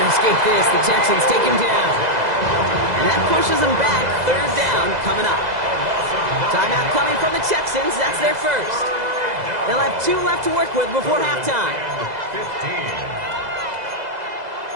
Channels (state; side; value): late; left; 2.0 ms